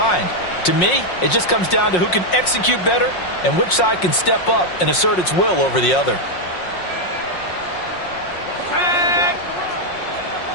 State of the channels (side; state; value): right; late; 5.5 ms